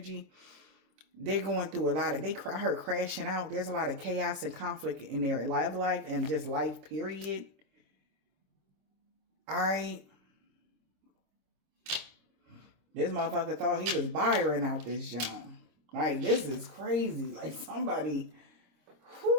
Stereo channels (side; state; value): left; late; 26 ms